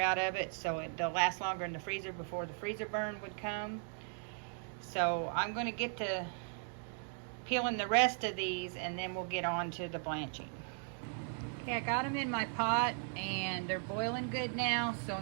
of it, so they'll last longer in the freezer before the freezer burn would come. So I'm going to get to peeling the rest of these, and then we'll get on to the blanching. Okay, I got them in my pot and they're boiling good now, so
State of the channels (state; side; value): silent; left; 53 dB below the other